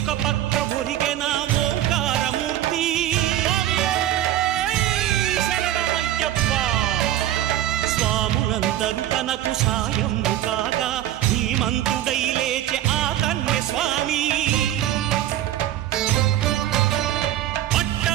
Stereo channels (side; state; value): left; quieter; 12.8 dB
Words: పక్క ఒరిగెన ఓంకారమూర్తి స్వాములందరూ తనకు సాయము కాగా ధీమంతుడై లేచే ఆ కన్య స్వామి